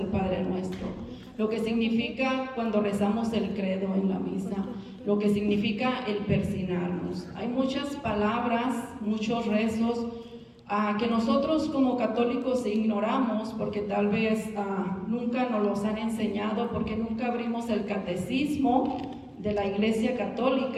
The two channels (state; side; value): identical; both; correlation 1.00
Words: Padre Nuestro, lo que significa cuando rezamos el credo en la misa, lo que significa el persignarnos. Hay muchas palabras, muchos rezos que nosotros como católicos ignoramos porque tal vez nunca nos los han enseñado, porque nunca abrimos el catecismo de la Iglesia